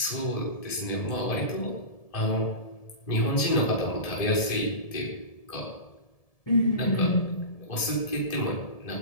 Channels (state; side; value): late; right; 1.7 ms